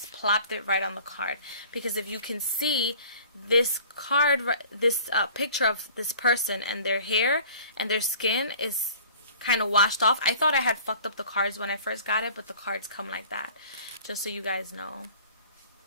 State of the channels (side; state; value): both; inverted; correlation -0.47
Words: plopped it right on the card. Because if you can see this card, this picture of this person, and their hair and their skin is kind of washed off. I thought I had fucked up the cards when I first got it, but the cards come like that, just so you guys know.